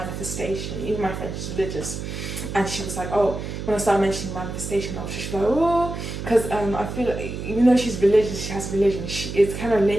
Even my friend, she's religious, and she was oh, when I started mentioning manifestation, I was just oh, because I feel even though she's religious, she has religion, it kind of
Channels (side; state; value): right; noise; hum, 6 dB below the sound